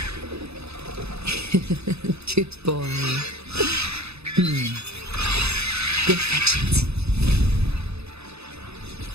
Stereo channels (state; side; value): late; left; 0.79 ms